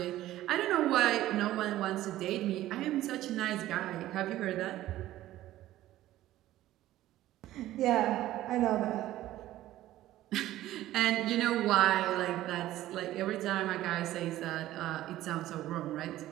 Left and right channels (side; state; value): left; quieter; 14.6 dB